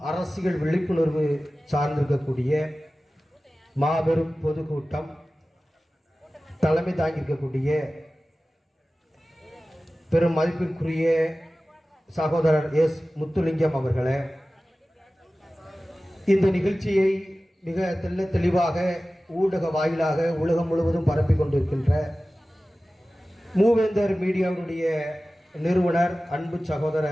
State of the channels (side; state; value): both; normal; correlation 0.96